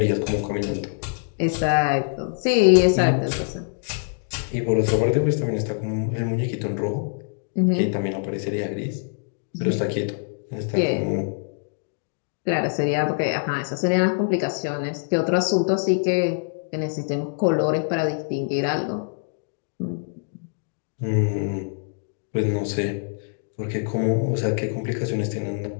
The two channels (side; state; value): right; silent; digital silence